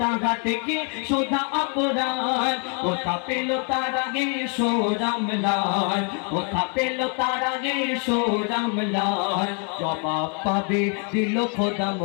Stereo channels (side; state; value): right; quieter; 38.6 dB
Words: তাগাতে কি সুধা অপরাধ কোথা পেল তার আগে সোরামলাল কোথা পেল তার আগে সোরামলাল জবাব পাবে দিল খোদা